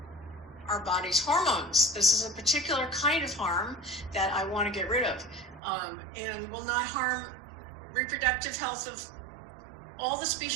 our body's hormones. This is a particular kind of harm that I want to get rid of, and will not harm reproductive health of all the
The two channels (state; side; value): drops out; left; at 5.6 s